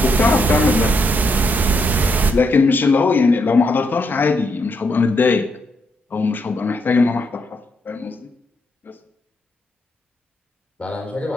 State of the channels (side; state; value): both; normal; correlation 0.78